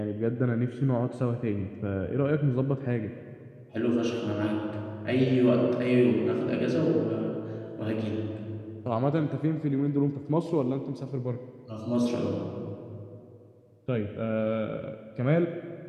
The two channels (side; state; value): both; identical; correlation 1.00